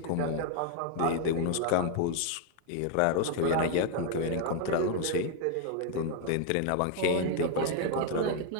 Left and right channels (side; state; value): both; different; correlation 0.00